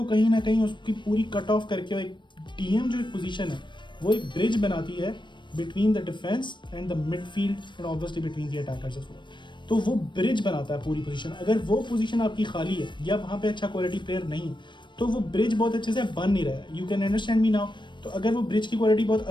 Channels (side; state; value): right; late; 0.22 ms